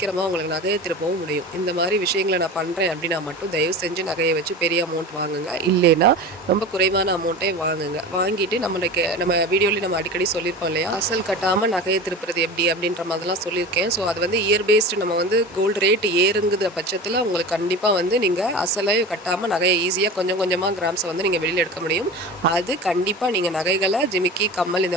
உங்களுக்கு நகையை திருப்பவும் முடியும். இந்த மாதிரி விஷயங்களை நான் பண்ணுறேன் அப்படின்னா மட்டும் தயவு செஞ்சு நகையை வச்சு பெரிய அமௌண்ட் வாங்குங்க. இல்லைன்னா ரொம்ப குறைவான அமௌண்ட்டே வாங்குங்க. வாங்கிட்டு நம்ம வீடியோலேயே நம்ம அடிக்கடி சொல்லியிருப்போம் இல்லையா, அசல் கட்டாமல் நகையை திருப்புறது எப்படி அப்படின்ற மாதிரிலாம் சொல்லியிருக்கேன். ஸோ அது வந்து இயர் பேஸ்டு நம்ம வந்து கோல்டு ரேட் ஏறுங்குற பட்சத்தில் உங்களுக்கு கண்டிப்பாக வந்து நீங்கள் அசலை கட்டாமல் நகையை ஈஸியாக கொஞ்சம் கொஞ்சமாக கிராம்ஸை வந்து நீங்கள் வெளியில் எடுக்க முடியும். அது கண்டிப்பாக நீங்கள் நகைகளை ஜிமிக்கி கம்மல்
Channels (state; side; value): normal; both; correlation 0.32